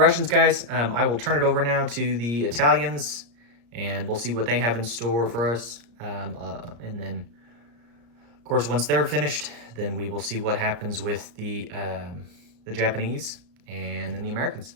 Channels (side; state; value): left; late; 34 ms